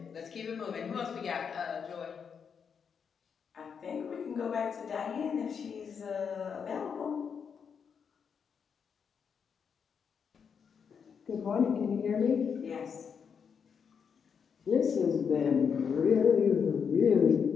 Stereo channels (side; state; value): right; quieter; 6.7 dB